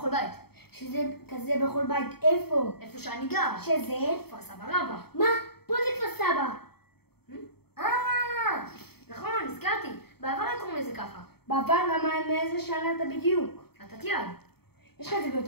בית. שזה כזה בכל בית, איפה? איפה שאני גר. שזה? כפר סבא רבא. מה? פה זה כפר סבא. נכון, הזכרתי. בעבר היה קוראים לזה ככה. בעבר למה מאיזה שנה אתה בדיוק? אתה תיעד. יש לך את זה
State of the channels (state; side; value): late; right; 0.96 ms